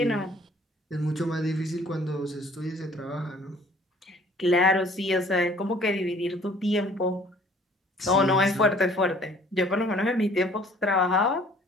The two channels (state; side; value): normal; both; correlation 0.55